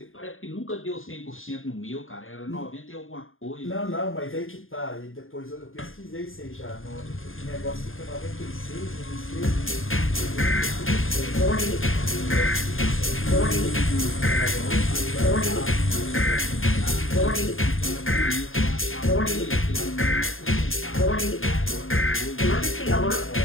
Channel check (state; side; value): late; right; 0.59 ms